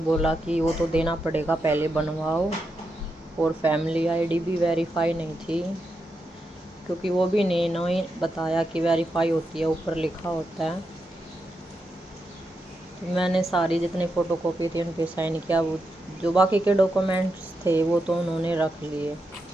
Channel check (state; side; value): normal; both; correlation 0.85